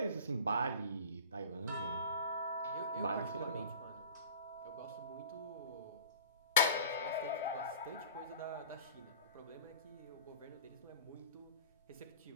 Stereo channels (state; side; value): inverted; both; correlation -0.41